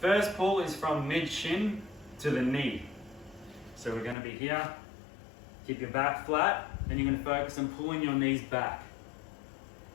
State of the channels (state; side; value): drops out; right; at 4.2 s